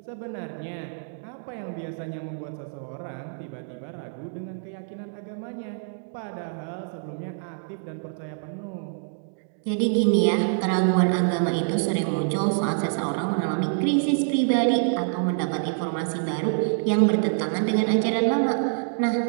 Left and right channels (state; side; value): silent; left; digital silence